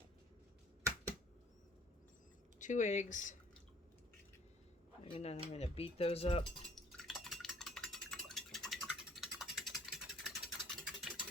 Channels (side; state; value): both; normal; correlation 0.58